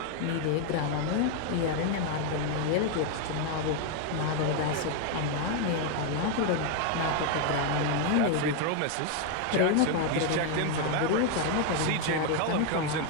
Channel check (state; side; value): different; both; correlation 0.01